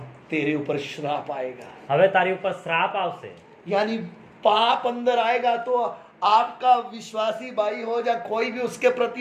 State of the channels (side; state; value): both; identical; correlation 1.00